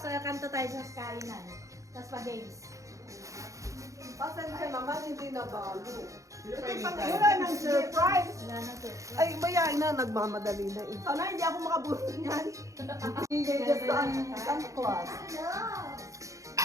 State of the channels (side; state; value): left; late; 0.15 ms